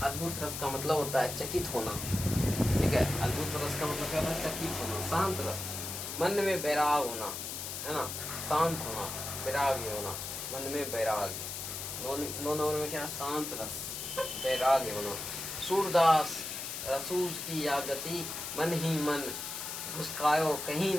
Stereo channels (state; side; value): noise; left; hiss, 6 dB below the sound